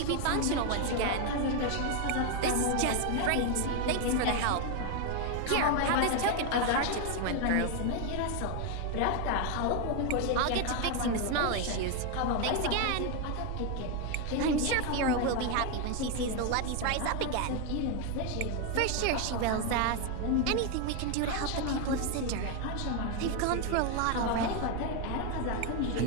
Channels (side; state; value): both; different; correlation 0.01